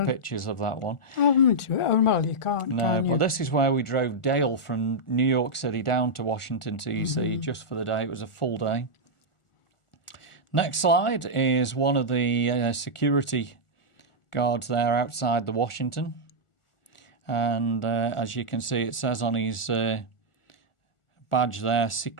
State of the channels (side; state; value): right; late; 1.4 ms